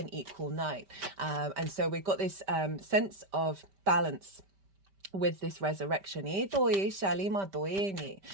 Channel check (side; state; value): left; late; 5.1 ms